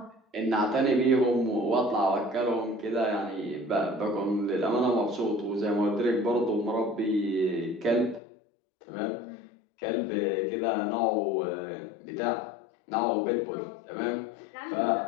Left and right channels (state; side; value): drops out; right; at 8.2 s